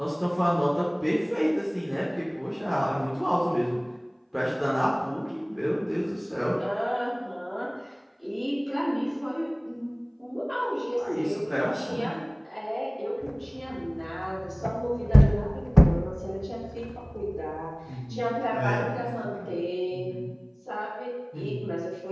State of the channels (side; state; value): both; identical; correlation 1.00